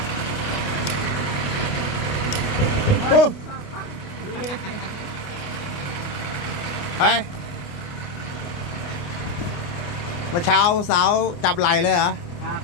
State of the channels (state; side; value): late; right; 29 ms